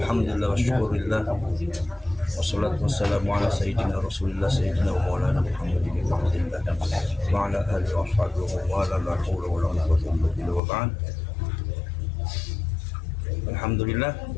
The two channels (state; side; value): drops out; right; at 10.6 s